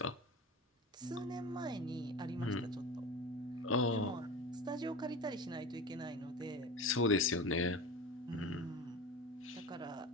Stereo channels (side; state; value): both; normal; correlation 0.31